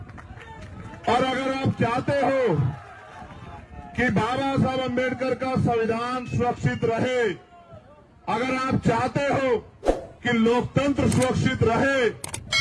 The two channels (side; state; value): both; identical; correlation 1.00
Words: और अगर आप चाहते हो कि बाबा साहब अम्बेडकर का संविधान सुरक्षित रहे, अगर आप चाहते हो कि लोकतंत्र सुरक्षित रहे,